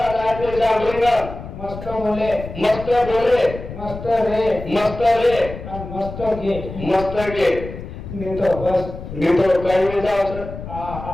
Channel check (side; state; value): left; noise; rumble, 11 dB below the sound